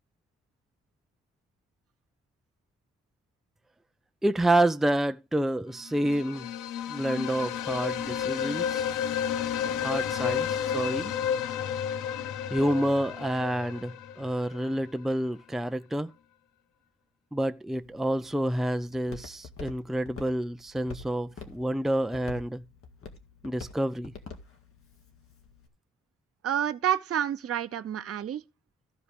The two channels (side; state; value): both; normal; correlation 0.73